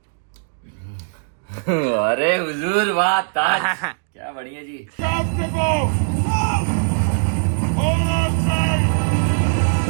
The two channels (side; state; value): left; silent; digital silence